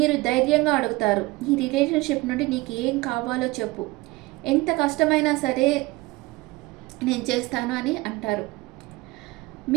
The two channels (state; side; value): quieter; left; 21.7 dB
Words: ధైర్యంగా అడుగుతారు, ఈ రిలేషన్షిప్ నుండి నీకు ఏం కావాలో చెప్పు, ఎంత కష్టమైనా సరే నేను చేస్తాను అని అంటారు.